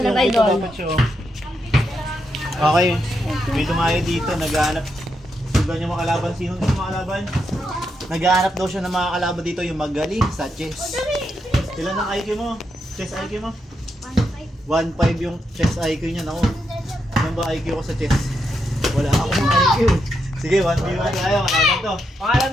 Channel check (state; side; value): normal; both; correlation 0.82